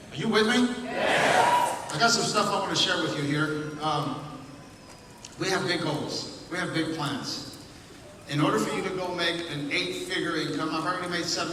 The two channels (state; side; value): identical; both; correlation 1.00